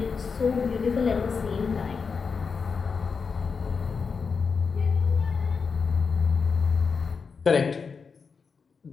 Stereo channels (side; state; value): right; quieter; 5.3 dB